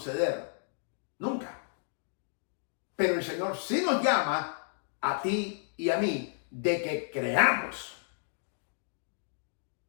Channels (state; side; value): silent; right; digital silence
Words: Nunca. Pero el Señor sí nos llama a ti y a mí de que creamos.